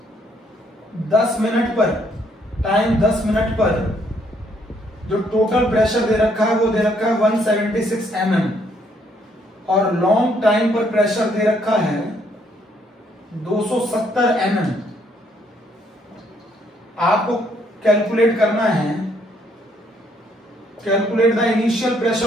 10 मिनट पर, टाइम 10 मिनट पर जो टोटल प्रेशर दे रखा है वो दे रखा है 176 mm, और लॉन्ग टाइम पर प्रेशर दे रखा है 270 mm। आपको कैलकुलेट करना है, calculate the initial pressure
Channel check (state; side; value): normal; both; correlation 0.69